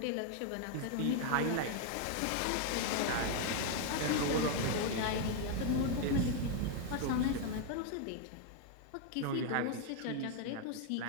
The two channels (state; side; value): different; both; correlation 0.00